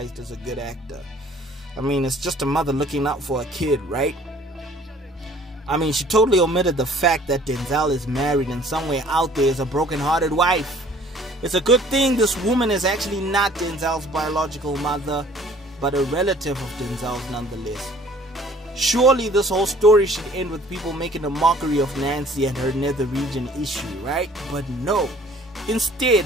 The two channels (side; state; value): both; normal; correlation 0.54